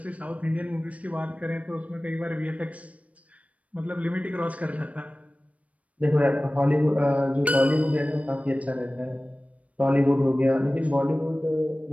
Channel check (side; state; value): left; late; 0.066 ms